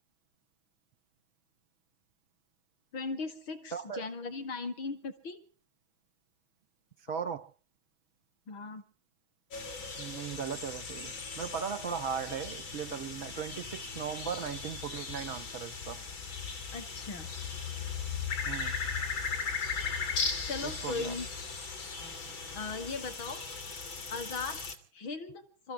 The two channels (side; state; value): right; late; 6.1 ms